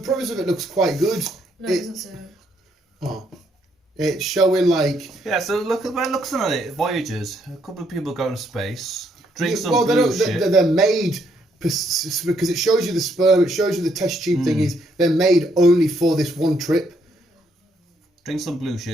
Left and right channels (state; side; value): normal; both; correlation 0.72